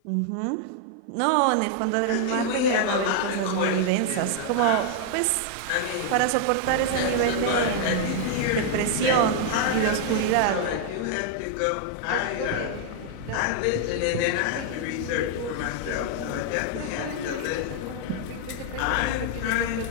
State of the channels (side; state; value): both; different; correlation 0.00